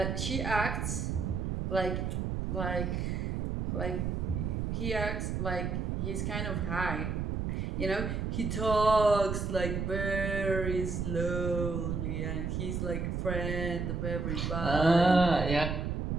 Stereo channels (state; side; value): noise; right; rumble, 1 dB below the sound